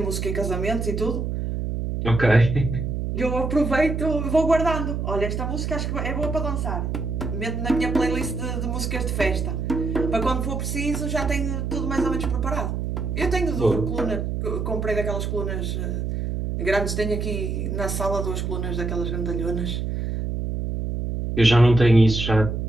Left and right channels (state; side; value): noise; right; hum, 2 dB below the sound